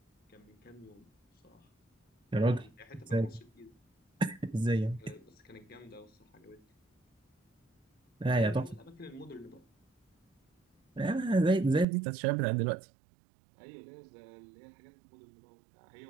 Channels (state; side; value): drops out; left; at 11.9 s